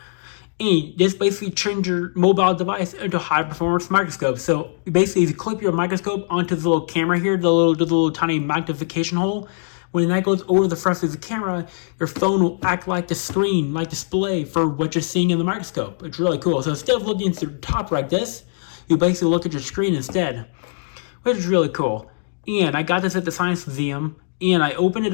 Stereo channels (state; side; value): silent; right; digital silence